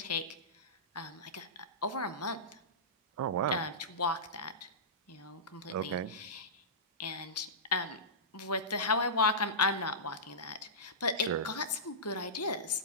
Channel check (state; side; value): normal; both; correlation -0.20